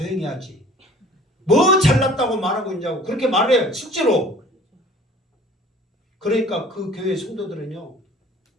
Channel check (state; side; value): normal; both; correlation 0.49